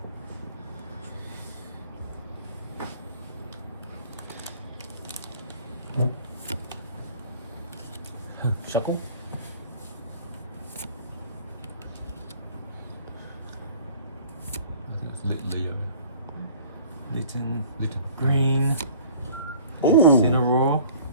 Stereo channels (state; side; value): inverted; both; correlation -0.50